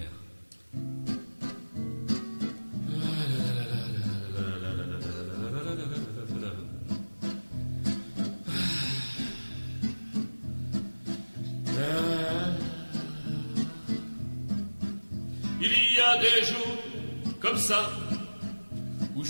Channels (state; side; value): inverted; both; correlation -1.00